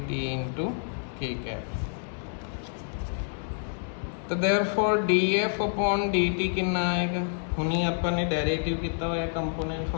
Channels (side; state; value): right; silent; digital silence